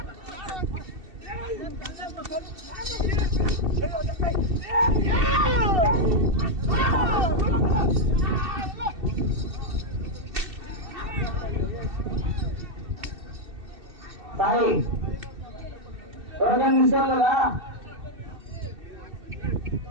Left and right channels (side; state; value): left; late; 2.7 ms